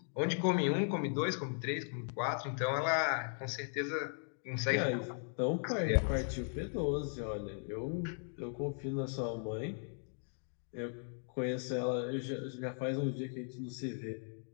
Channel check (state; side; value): silent; right; 53 dB below the other